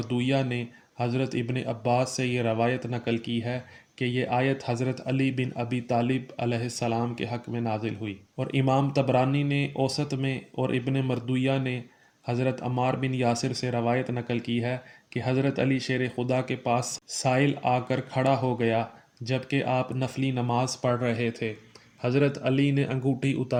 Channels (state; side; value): identical; both; correlation 1.00